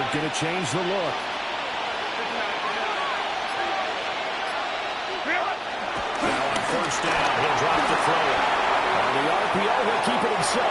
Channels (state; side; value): identical; both; correlation 1.00